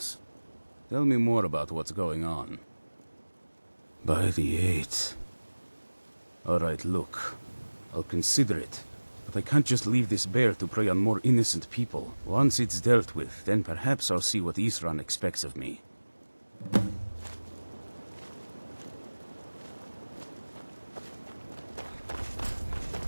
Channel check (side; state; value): both; inverted; correlation -1.00